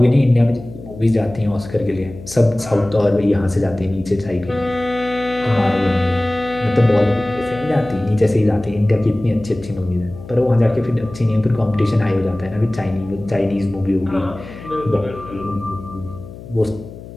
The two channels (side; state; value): left; noise; hum, 15 dB below the sound